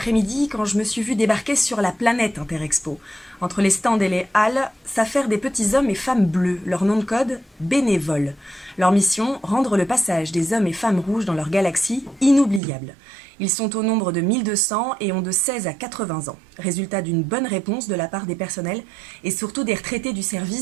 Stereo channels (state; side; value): drops out; left; at 12.6 s